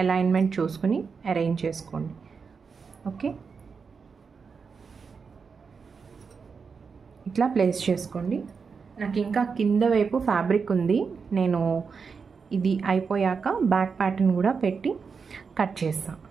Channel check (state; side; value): quieter; left; 5.4 dB